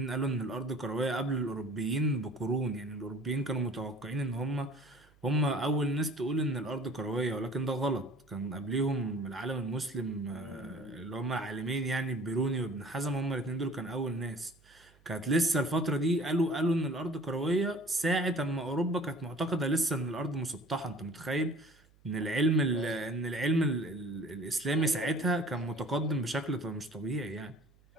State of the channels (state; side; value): noise; right; hum, 30 dB below the sound